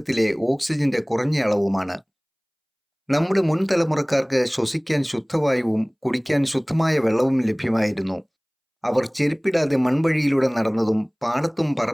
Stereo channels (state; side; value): identical; both; correlation 1.00